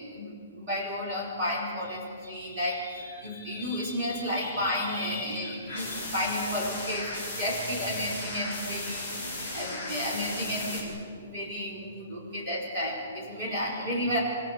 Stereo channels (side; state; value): both; inverted; correlation -0.43